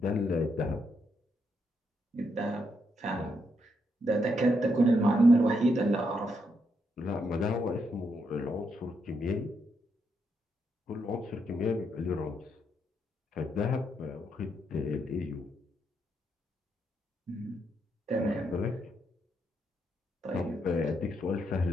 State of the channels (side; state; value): both; normal; correlation 0.79